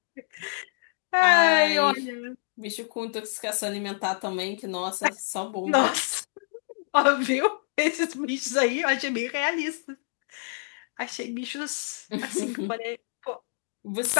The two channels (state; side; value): silent; right; digital silence